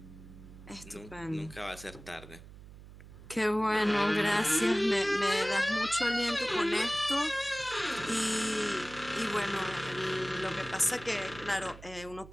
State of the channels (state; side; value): noise; right; hum, 18 dB below the sound